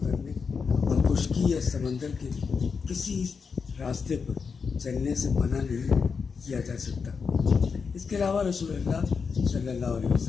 اور خشکی یا سمندر کے کسی راستے پر چلنے سے منع نہیں کیا جا سکتا۔ اس کے علاوہ رسول اللہ صلی اللہ علیہ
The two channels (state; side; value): quieter; right; 5.5 dB